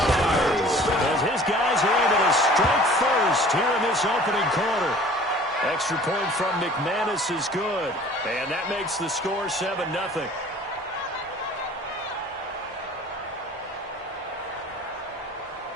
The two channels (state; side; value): normal; both; correlation 0.48